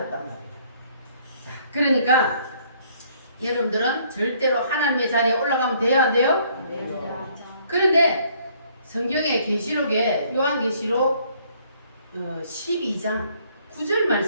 말이에요. 자, 그러니까 여러분들은 절대로 하나님의 자리에 올라가면 돼요, 안 돼요? 그런데 성경의 계시록에 요한계시록 12장 9절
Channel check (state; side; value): inverted; both; correlation -0.63